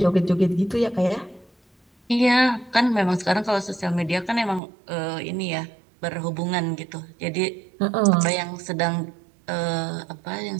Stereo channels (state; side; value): drops out; left; at 4.6 s